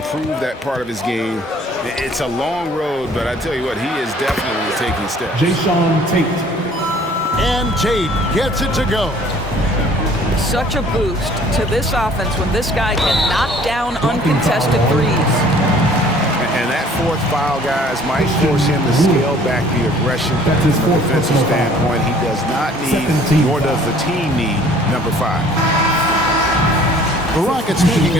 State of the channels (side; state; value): both; normal; correlation 0.54